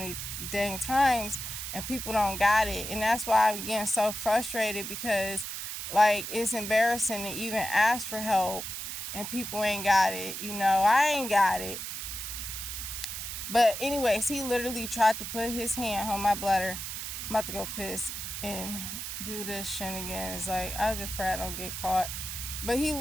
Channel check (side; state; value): right; noise; hiss, 6 dB below the sound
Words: dang times, and people don't got it. And that's why I'm getting so frustrated, because, like, it's embarrassing to even ask for help, and people ain't got it. You know, I ain't got it. But anyways, he literally tried to put his hand on my bladder. I'm about to go piss and do this shenanigans. Like, I just pray I don't get caught. But he